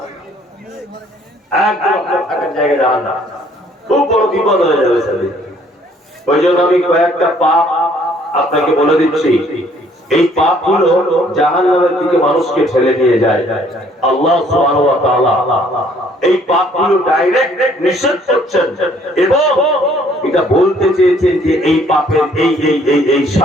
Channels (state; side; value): normal; both; correlation 0.61